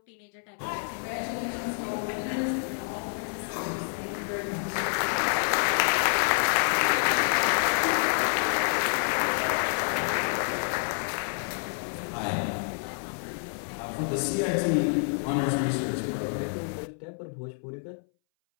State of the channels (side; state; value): right; silent; 59 dB below the other